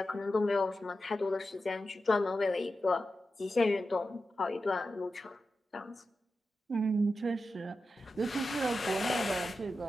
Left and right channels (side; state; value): both; normal; correlation 0.91